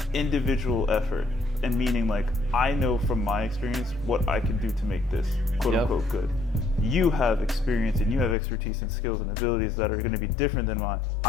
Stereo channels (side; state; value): right; drops out; at 8.3 s